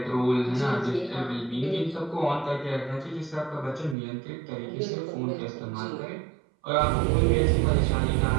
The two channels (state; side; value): drops out; left; at 4.0 s